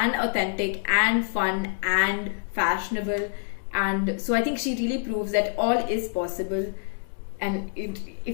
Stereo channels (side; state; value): right; silent; digital silence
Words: authentic and fun and fashionable. And so I think she really proves that all is possible, and